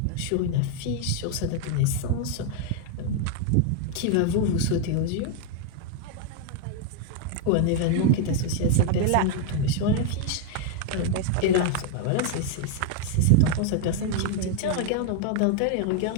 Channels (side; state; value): both; different; correlation 0.01